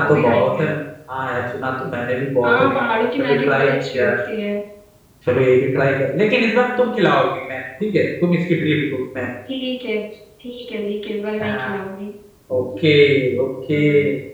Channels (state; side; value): identical; both; correlation 1.00